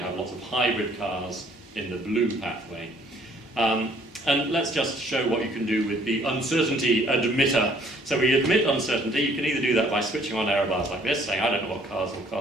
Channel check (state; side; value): normal; both; correlation 0.61